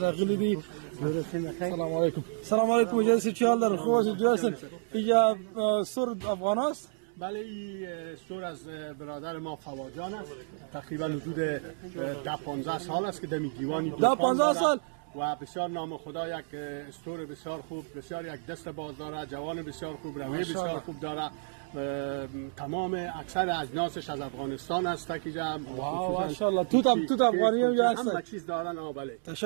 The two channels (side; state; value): left; silent; 57 dB below the other